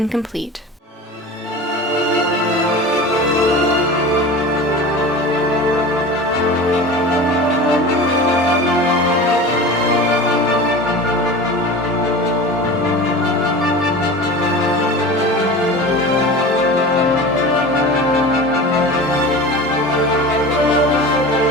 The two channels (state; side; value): normal; both; correlation 0.33